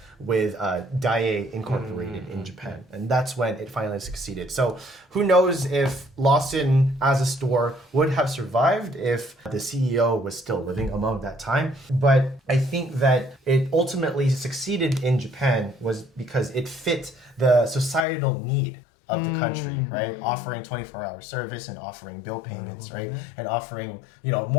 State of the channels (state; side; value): drops out; right; at 18.1 s